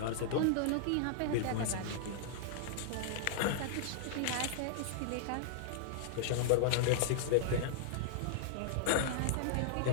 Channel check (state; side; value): different; both; correlation -0.01